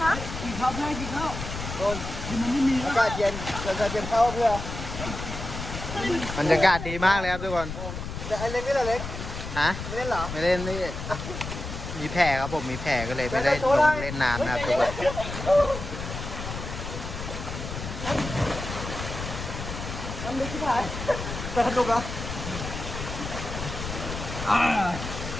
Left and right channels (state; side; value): noise; left; rumble, 7 dB below the sound